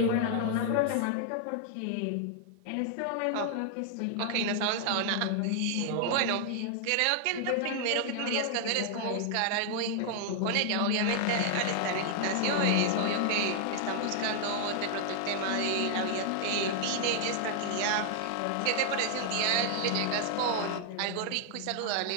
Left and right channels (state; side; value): different; both; correlation -0.01